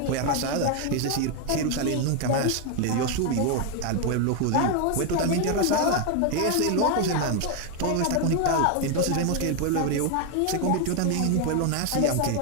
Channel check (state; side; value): different; both; correlation 0.01